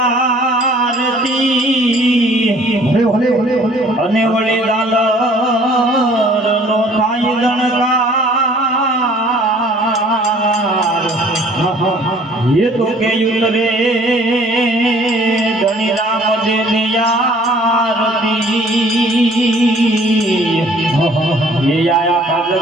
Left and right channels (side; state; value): both; normal; correlation 0.55